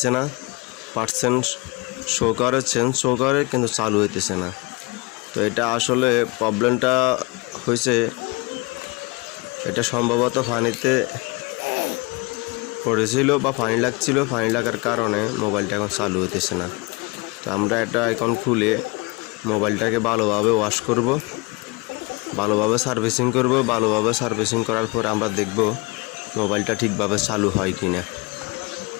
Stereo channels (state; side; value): quieter; right; 26.6 dB